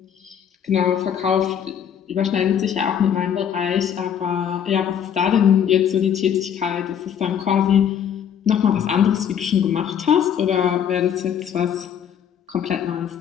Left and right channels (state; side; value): quieter; right; 8.6 dB